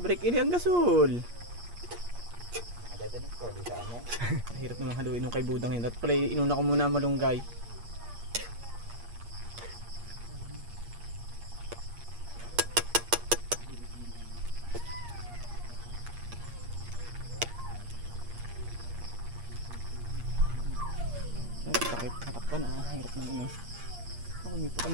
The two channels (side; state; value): left; late; 8.5 ms